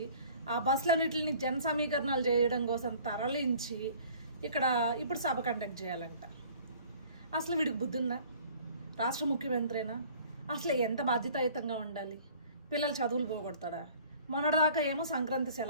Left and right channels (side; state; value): both; inverted; correlation -0.51